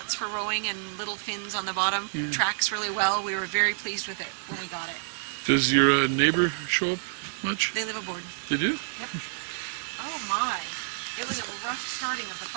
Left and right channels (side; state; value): left; silent; digital silence